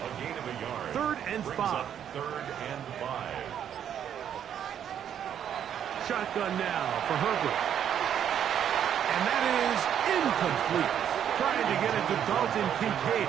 gain of a yard. 3rd and 5. 3rd and 5. Shotgun now for Herbert. And that is incomplete. Trying to get it to Dalton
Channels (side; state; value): left; quieter; 9.3 dB